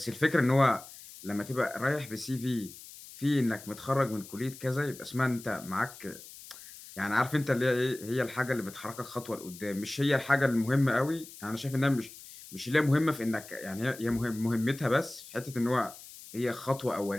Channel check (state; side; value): noise; left; hiss, 17 dB below the sound